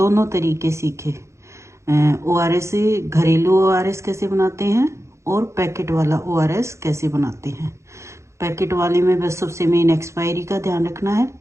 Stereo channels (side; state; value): left; late; 0.14 ms